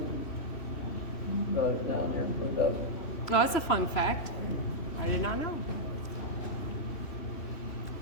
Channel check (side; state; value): right; late; 3.0 ms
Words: Brought it down there and put it up. well, that's a fun fact. I did not know.